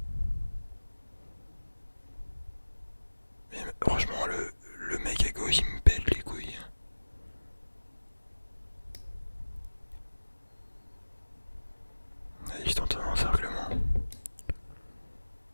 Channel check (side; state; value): both; inverted; correlation -1.00